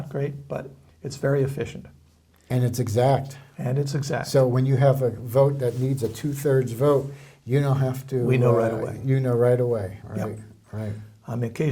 great, but it's very efficient. And it's exact. And it's exact. So when you have a vote that needs a 2/3 vote, you don't have to. We know right away. You know right away, right? Yep. Right.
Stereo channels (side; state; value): both; identical; correlation 1.00